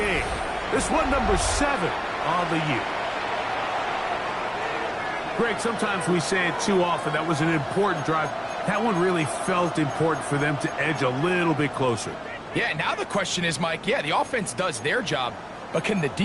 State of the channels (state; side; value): identical; both; correlation 1.00